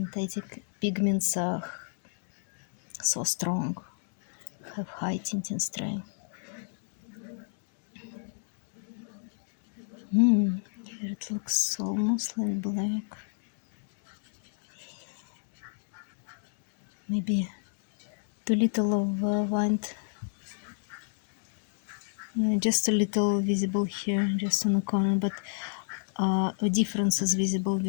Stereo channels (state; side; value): silent; right; digital silence